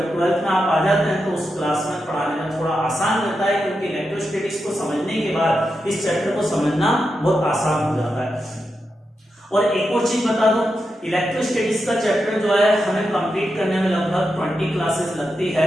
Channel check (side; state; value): both; normal; correlation 0.87